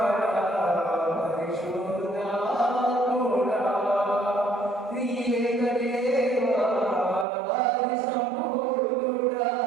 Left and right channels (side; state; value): left; drops out; at 7.2 s